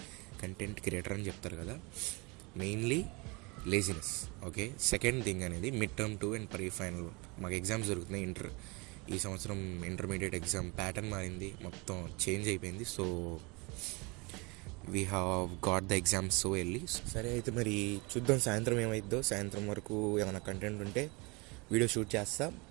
కంటెంట్ క్రియేటర్ అని చెప్తారు కదా, mainly laziness. Okay, second thing అనేది mid term 2 and pre final. మాకు ఎగ్జామ్స్ జరుగుతున్నాయి. ఈ సంవత్సరం ఇంటర్మీడియట్ ఎగ్జామ్ ప్యాటర్న్ మారింది, మొత్తం చేంజ్ అయిపోయింది. So we have got the exams so early. సరే అయితే మరి చూద్దాం సాయంత్రం ఏమైద్దో. సాయంత్రం వరకు ఏమైనా కంటెంట్ ఉంటే వీడియో షూట్ చేస్తా.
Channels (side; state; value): left; quieter; 27.4 dB